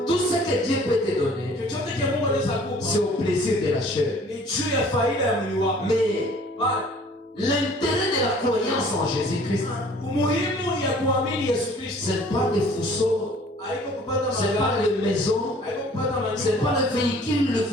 Tout ce que Dieu peut te donner, c'est au plaisir de la chair. Mais l'intérêt de la croyance en Jésus-Christ, ce n'est pas les fourceaux, ce n'est pas les maisons, ce n'est pas le véhicule, le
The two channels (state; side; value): normal; both; correlation 0.53